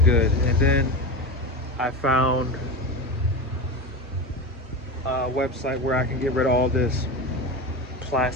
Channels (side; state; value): both; normal; correlation 0.23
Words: And then I found a website where I can get rid of all this